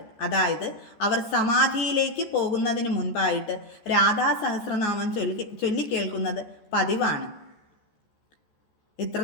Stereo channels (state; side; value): late; right; 14 ms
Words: അതായത് അവർ സമാധിയിലേക്ക് പോകുന്നതിന് മുൻപായിട്ട് രാധാ സഹസ്രനാമം ചൊല്ലിക്കേൾക്കുന്നത് പതിവാണ്.